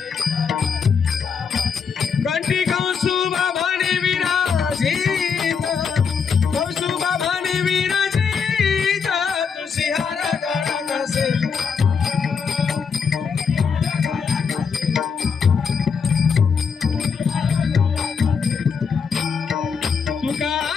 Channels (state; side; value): quieter; right; 6.1 dB